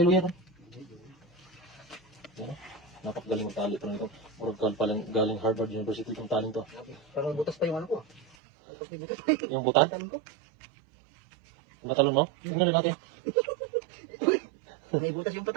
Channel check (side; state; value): left; drops out; at 8.3 s